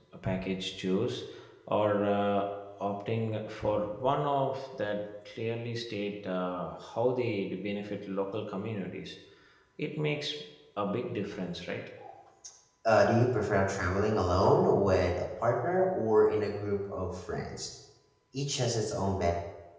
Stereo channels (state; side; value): identical; both; correlation 1.00